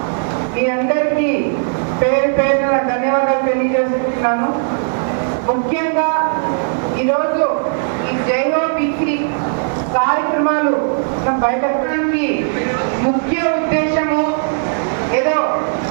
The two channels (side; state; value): left; silent; digital silence